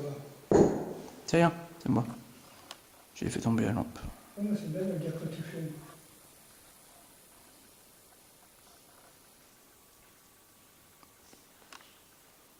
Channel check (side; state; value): both; identical; correlation 1.00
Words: là. C'est rien, c'est moi. J'ai fait tomber la lampe. Oh, mais c'est belle la guerre que tu fais.